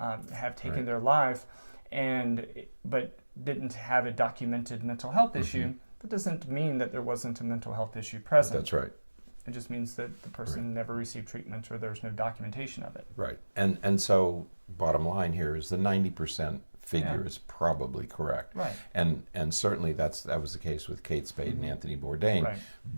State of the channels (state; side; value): inverted; both; correlation -1.00